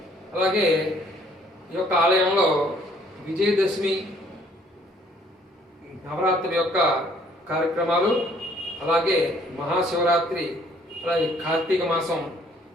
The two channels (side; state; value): both; normal; correlation 0.61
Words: అలాగే ఈ యొక్క ఆలయంలో విజయదశమి నవరాత్రి యొక్క కార్యక్రమాలు, అలాగే మహాశివరాత్రి, అలాగే కార్తీక మాసం